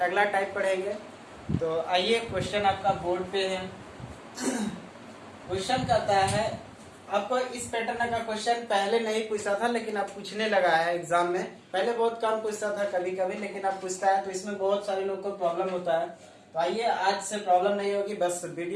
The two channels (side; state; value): both; identical; correlation 1.00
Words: टाइप पढ़ेंगे। तो आइए, क्वेश्चन आपका बोर्ड पे है। क्वेश्चन कहता है, आपको इस पैटर्न का क्वेश्चन पहले नहीं पूछा था, लेकिन अब पूछने लगा है एग्जाम में। पहले बहुत कम पूछता था कभी कभी, लेकिन अब पूछता है, तो इसमें बहुत सारे लोग को प्रॉब्लम होता है। तो आइए, आज से प्रॉब्लम नहीं होगी, बस